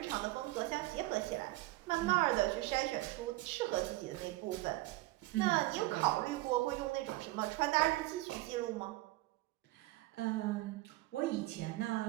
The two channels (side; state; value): left; quieter; 19.2 dB